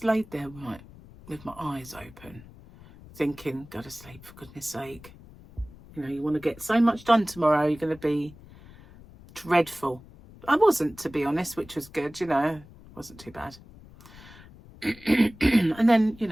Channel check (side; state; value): left; noise; rumble, 21 dB below the sound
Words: laid there right with my eyes open, thinking, go to sleep for goodness sake. You know, you want to get so much done tomorrow, you're going to be dreadful. I wasn't, to be honest, which was good, you know, wasn't too bad. And then, you